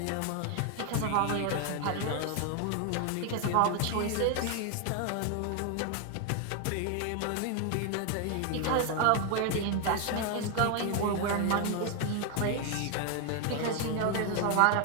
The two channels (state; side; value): different; both; correlation 0.01